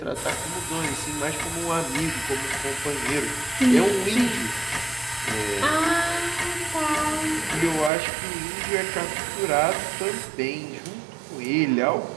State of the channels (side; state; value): left; drops out; at 7.9 s